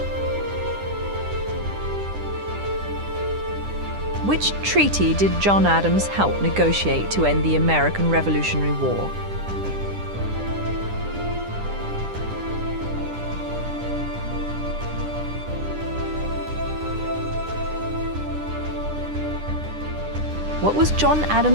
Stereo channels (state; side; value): late; left; 10 ms